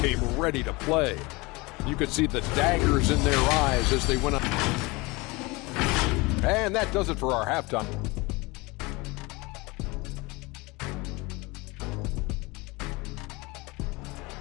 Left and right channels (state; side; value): quieter; right; 24.4 dB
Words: ready to play. You could see the daggers in their eyes as they went up. And that does it for our halftime.